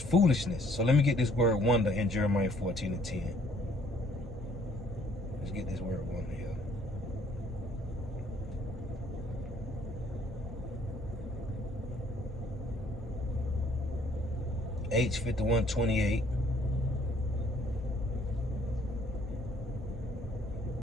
So let me get this word wonder in Jeremiah 14:10. Let's get this word wonder here. H5128.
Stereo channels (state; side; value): normal; both; correlation 0.62